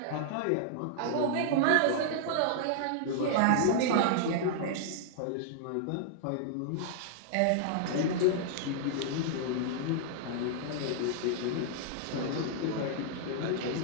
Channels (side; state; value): both; different; correlation -0.01